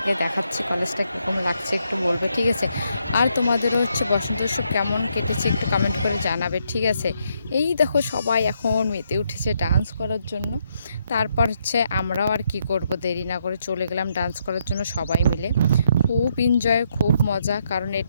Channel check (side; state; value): both; inverted; correlation -0.77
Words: দেখাচ্ছি, কলেজটা কীরকম লাগছে একটু বলবে, ঠিক আছে? আর তোমাদেরও হচ্ছে বসন্ত উৎসব কেমন কেটেছে একটু কমেন্ট করে জানাবে, ঠিক আছে? এই দেখো সবাই এখন মেতে উঠেছে ডান্স করার জন্য। তারপর হচ্ছে আমরাও আর কি করব, দেরি না করে চলে গেলাম ডান্স করার জন্য সবাই মিলে। খুব এনজয়, খুব মজা, কারণ